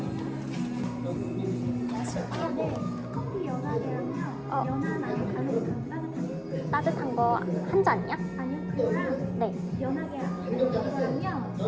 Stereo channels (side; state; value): both; identical; correlation 1.00